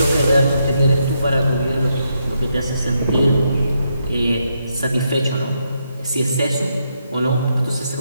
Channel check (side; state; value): both; inverted; correlation -0.80